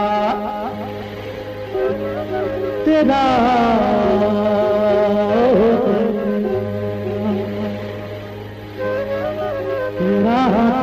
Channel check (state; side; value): identical; both; correlation 1.00